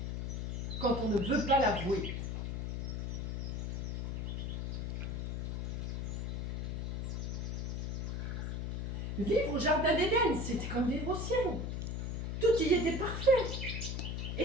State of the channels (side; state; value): left; noise; hum, 2 dB below the sound